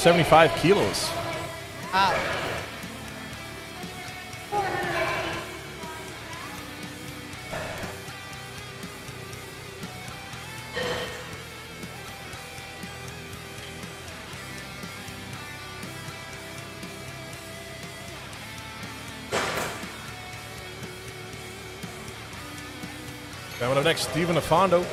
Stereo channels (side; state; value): both; identical; correlation 1.00